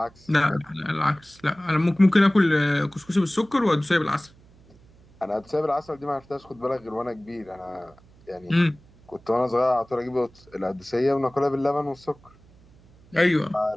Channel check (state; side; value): noise; right; hum, 27 dB below the sound